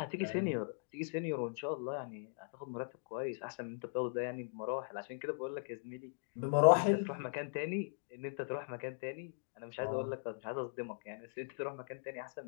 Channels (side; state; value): right; silent; digital silence